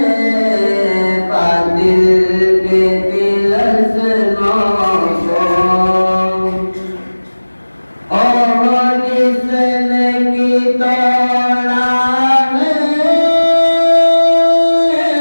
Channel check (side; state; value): both; inverted; correlation -1.00